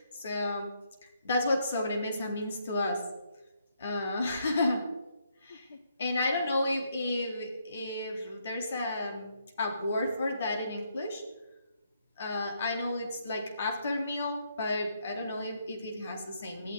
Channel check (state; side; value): inverted; both; correlation -0.74